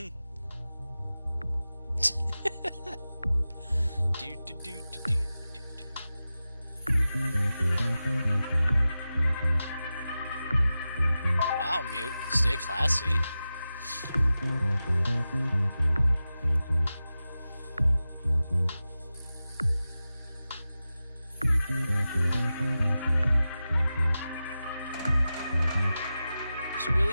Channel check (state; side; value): inverted; both; correlation -0.94